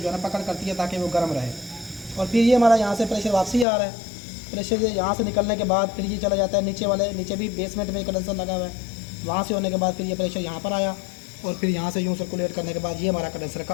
है ना पकड़ करती है ताकि वो गर्म रहे। और फिर ये हमारा यहाँ से प्रेशर वापसी आ रहा है, प्रेशर यहाँ से निकलने के बाद फिर ये चला जाता है नीचे भी बेसमेंट में कंडेंसर लगा हुआ है, वहाँ से होने के बाद फिर ये प्रेशर यहाँ पर आया और फिर यहाँ से यूँ सर्कुलेट करने के बाद ये हमारा कंडेंसर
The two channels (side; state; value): right; drops out; at 3.7 s